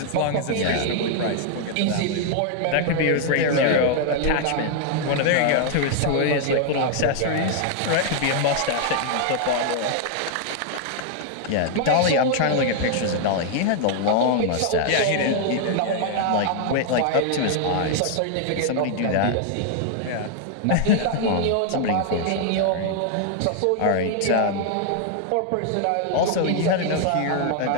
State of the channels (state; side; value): different; both; correlation 0.00